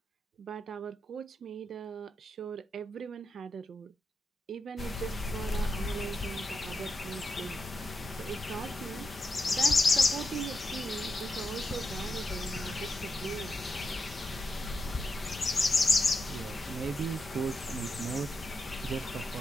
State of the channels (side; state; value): both; normal; correlation 0.86